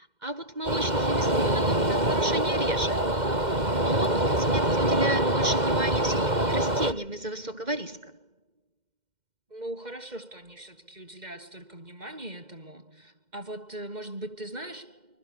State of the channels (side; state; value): left; late; 2.1 ms